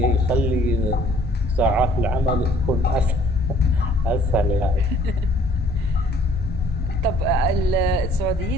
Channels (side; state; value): both; normal; correlation 0.58